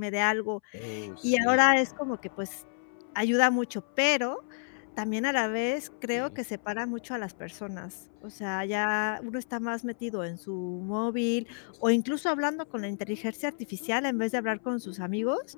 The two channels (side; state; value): right; silent; 58 dB below the other